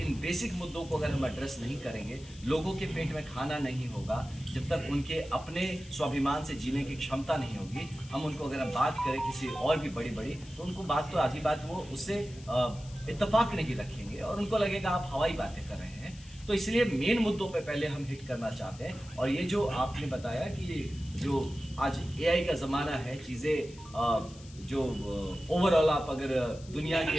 बेसिक मुद्दों को अगर हम एड्रेस नहीं करेंगे, लोगों के पेट में खाना नहीं होगा, जब तक उनके अपने स्वाभिमान से जीने की क्षमता नहीं होगी, हम उनको अगर हम बात करें किसी और भी बड़ी तो उनको बात तो आधी बात वो उससे इत्तेफाक नहीं रखेंगे और उनको लगेगा आप हवाई बातें कर रहे हैं। तो इसलिए मेन मुद्दों पे पहले हम हिट करना चाहते हैं। और ये जो आपने बताया कि जो आज AI का ज़माना है, चीज़ें जो ओवरऑल आप अगर दुनिया के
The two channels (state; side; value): noise; left; hiss, 21 dB below the sound